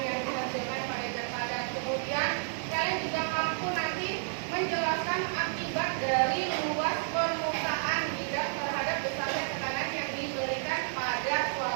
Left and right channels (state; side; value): silent; left; digital silence